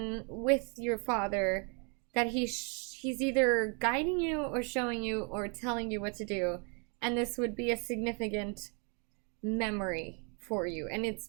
with your father, that he's either guiding you or showing you or telling you what to do. And this would be a significant memory for you. And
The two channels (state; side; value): quieter; left; 36.5 dB